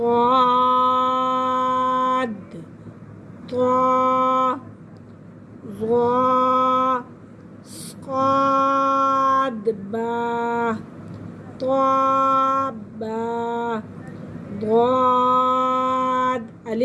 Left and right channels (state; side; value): identical; both; correlation 1.00